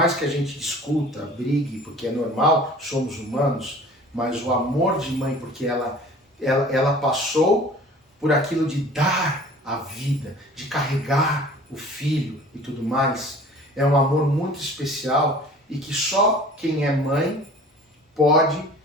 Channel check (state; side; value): normal; both; correlation 0.46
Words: que a gente discuta, brigue, porque é normal, somos humanos, mas o amor de mãe, porque ela passou por aquilo de dar a vida, de carregar o filho e tudo mais, é um amor muito especial e que só quem é mãe pode,